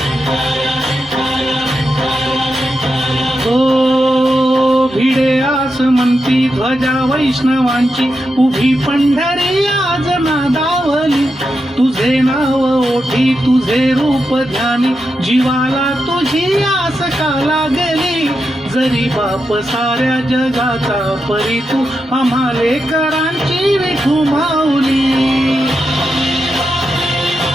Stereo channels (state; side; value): normal; both; correlation 0.87